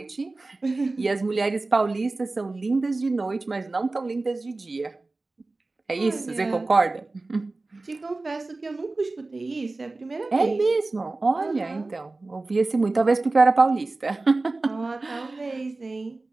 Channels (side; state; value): left; quieter; 3.3 dB